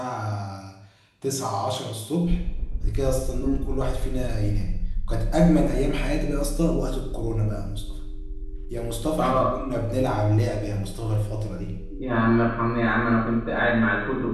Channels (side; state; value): both; identical; correlation 1.00